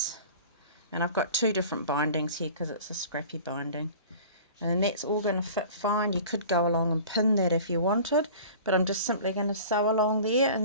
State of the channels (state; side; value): inverted; both; correlation -0.42